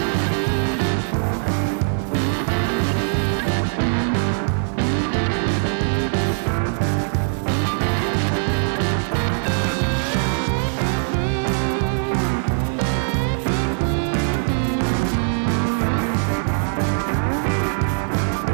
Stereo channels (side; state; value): left; silent; digital silence